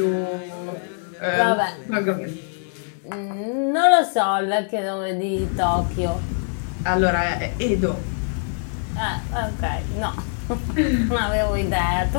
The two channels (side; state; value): right; silent; digital silence